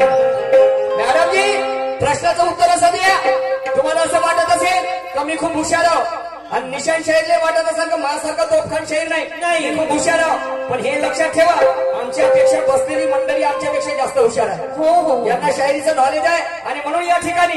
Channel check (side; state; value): both; identical; correlation 1.00